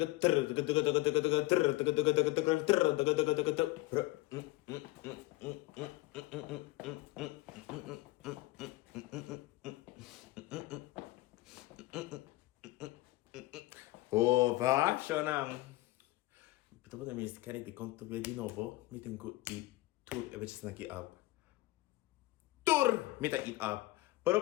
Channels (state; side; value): quieter; right; 19.1 dB